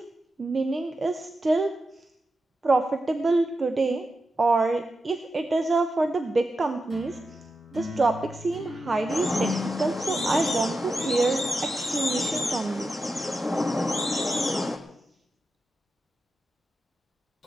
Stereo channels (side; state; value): both; normal; correlation 0.89